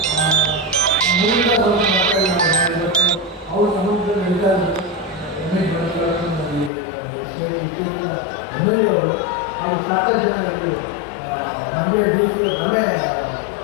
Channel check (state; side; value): drops out; right; at 6.7 s